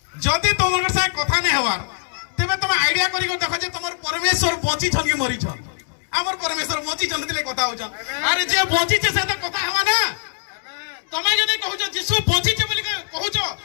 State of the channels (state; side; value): silent; right; digital silence